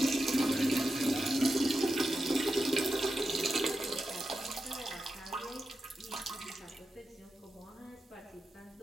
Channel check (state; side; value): normal; both; correlation 0.90